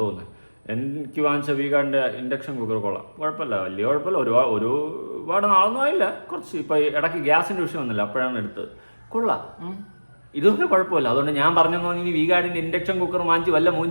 എനിക്ക് വാങ്ങിച്ച വീഗാർഡിൻ്റെ ഇൻഡക്ഷൻ കുക്കർ കൊള്ളാം, കുഴപ്പമില്ല, വലിയ കുഴപ്പമില്ല. ഒരുപാട് നാളൊന്നും ആയില്ല, കുറച്ച് ഇപ്പോൾ ഇടയ്ക്ക് ഗ്യാസിൻ്റെ വിഷയം വന്നില്ല, അപ്പോഴാണ് എടുത്തത്. കൊള്ളാം, ഇതൊക്കെ കുഴപ്പമില്ല. അതുകൊണ്ട് ഞാൻ പറഞ്ഞെന്ന് പറഞ്ഞാൽ ഈ വീഗാർഡിൻ്റെ ഇൻഡക്ഷൻ കുക്കർ വാങ്ങിച്ച് വല്ല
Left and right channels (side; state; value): both; inverted; correlation -1.00